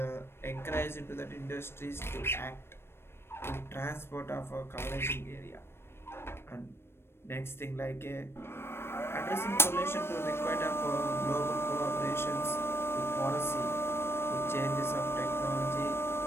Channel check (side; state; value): right; late; 0.12 ms